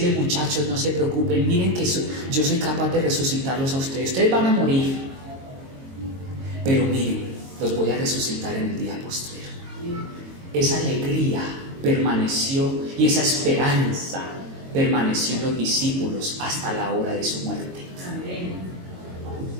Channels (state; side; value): late; left; 22 ms